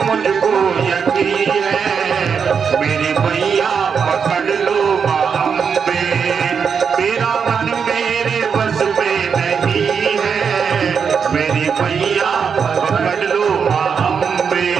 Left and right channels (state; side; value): quieter; left; 6.4 dB